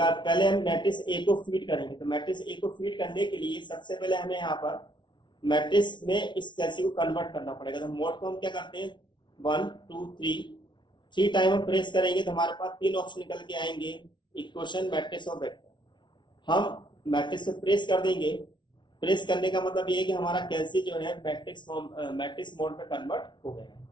हम मैट्रिक्स ए को फीड करेंगे। तो मैट्रिक्स ए को फीड करने के लिए सबसे पहले हमें यहाँ पर मैट्रिक्स में इस कैल्सी को कन्वर्ट करना पड़ेगा। तो मोड को हम क्या करते हैं 1 2 3 टाइम हम प्रेस करेंगे तो हमारे पास 3 ऑप्शन निकल के आएंगे, इक्वेशन, मैट्रिक्स और वेक्टर। हम मैट्रिक्स को प्रेस कर देंगे। प्रेस करने का मतलब ये है कि हमारा कैल्सी जो है मैट्रिक्स मोड पे कन्वर्ट हो गया है।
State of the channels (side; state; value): right; late; 0.23 ms